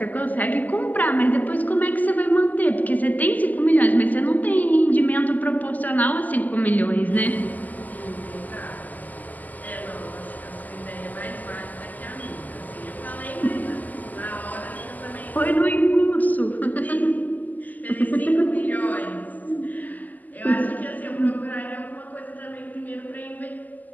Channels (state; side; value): late; right; 0.081 ms